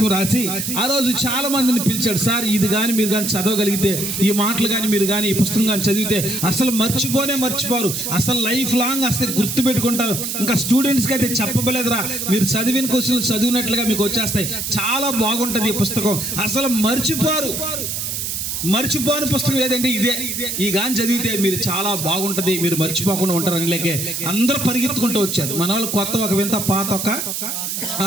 రాసి ఆ రోజు చాలా మందిని పిలిచాడు. సార్ ఇది కానీ మీరు కానీ చదవగలిగితే, ఈ మాటలు కానీ మీరు కానీ ఈ పుస్తకం కానీ చదివితే అసలు మర్చిపోరు, అసలు లైఫ్ లాంగ్ అసలు గుర్తు పెట్టుకుంటారు. ఇంకా స్టూడెంట్స్కి అయితే చెప్పబలేదురా, మీరు చదివిన క్వశ్చన్లు చదివినట్లుగా మీకు వచ్చేస్తాయి. చాలా బాగుంటుంది ఈ పుస్తకం, అసలు మర్చిపోని పుస్తకం ఏదంటే ఇదే. ఈ గాని చదివితే మీరు చాలా బాగుంటది, మీరు మర్చిపోకుండా ఉంటారని లేకే అందరూ పరిగెత్తుకుంటూ వచ్చారు. మన వాళ్ళు కొత్త ఒక వింత పాత ఒక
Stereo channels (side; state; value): right; noise; hiss, 3 dB below the sound